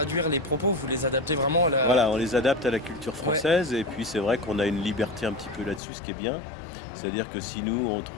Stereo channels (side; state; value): right; drops out; at 5.8 s